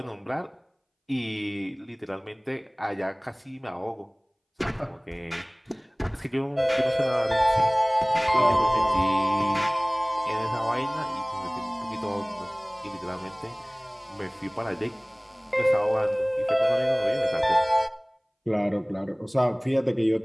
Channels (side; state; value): both; identical; correlation 1.00